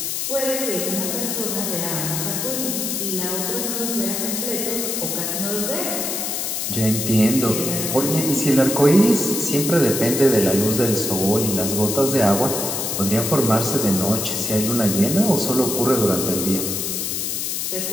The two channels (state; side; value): noise; left; hiss, 2 dB below the sound